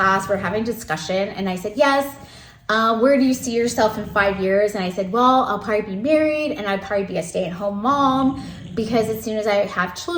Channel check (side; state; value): both; identical; correlation 1.00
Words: we're having discussion, and I said, yes, where do you see yourself in 5 years? And I said, well, I'll probably be married, and I'd probably be a stay-at-home mom, because as soon as I have